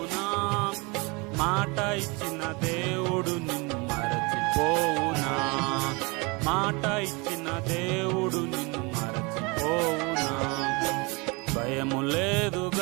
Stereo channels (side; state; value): left; quieter; 27.9 dB